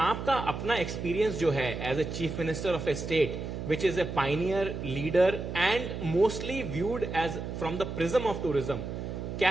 अपना experience जो है as a chief minister of a state which is a pioneer, leader and mostly viewed as from the prism of tourism,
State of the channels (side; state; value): right; noise; hum, 6 dB below the sound